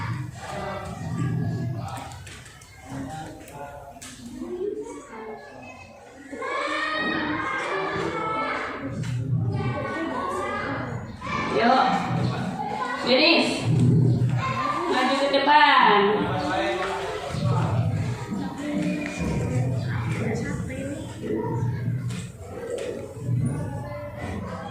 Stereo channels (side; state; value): both; identical; correlation 1.00